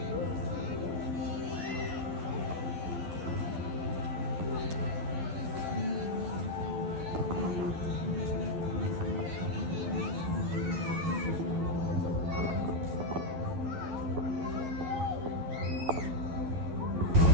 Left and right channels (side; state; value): left; late; 12 ms